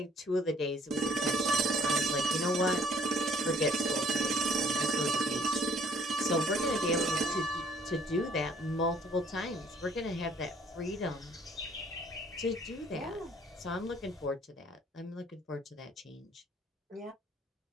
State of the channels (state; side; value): normal; both; correlation 0.60